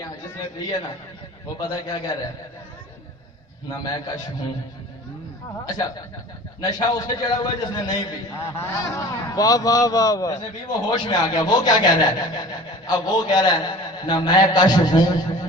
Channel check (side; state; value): both; normal; correlation 0.42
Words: جس نے پی ہے نا وہ پتہ کیا کہہ رہا ہے نہ میں کش ہوں. اچھا نشہ اس سے چڑھا ہوا ہے جس نے نہیں پی. واہ واہ واہ واہ جس نے پی وہ ہوش میں آ گیا. وہ کیا کہہ رہا ہے اب وہ کہہ رہا ہے نہ میں کش ہوں